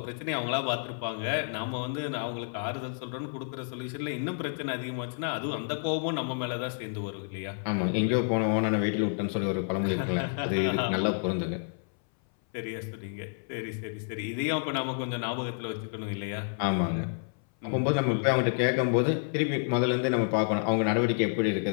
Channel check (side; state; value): right; silent; 58 dB below the other